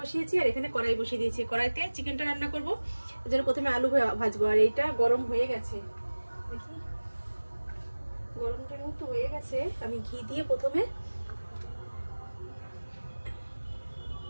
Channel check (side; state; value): both; inverted; correlation -1.00